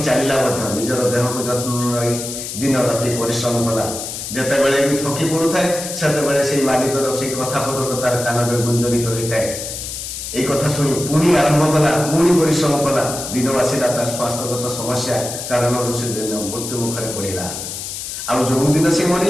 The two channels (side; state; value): left; noise; hiss, 7 dB below the sound